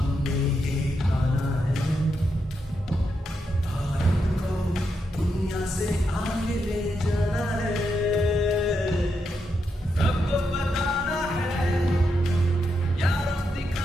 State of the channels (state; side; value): normal; both; correlation 0.83